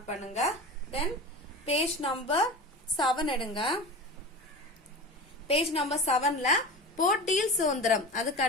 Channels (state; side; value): normal; both; correlation 0.31